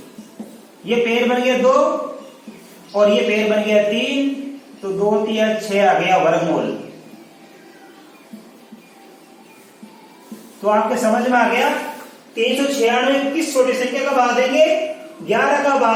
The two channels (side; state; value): both; identical; correlation 1.00